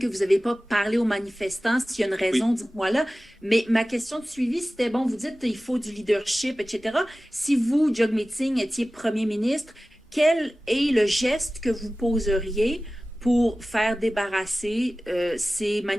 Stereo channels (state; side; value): normal; both; correlation 0.97